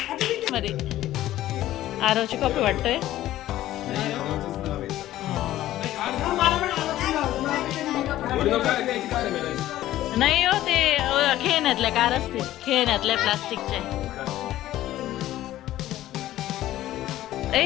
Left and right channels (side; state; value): right; quieter; 14.2 dB